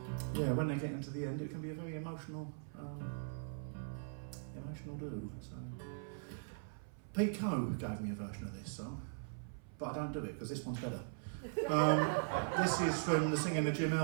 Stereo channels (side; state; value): left; silent; 51 dB below the other